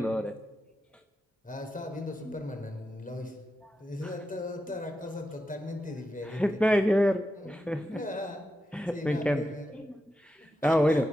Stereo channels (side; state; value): both; normal; correlation 0.89